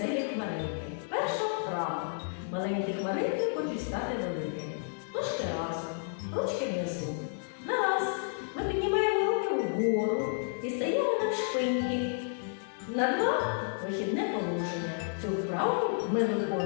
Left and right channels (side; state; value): right; silent; digital silence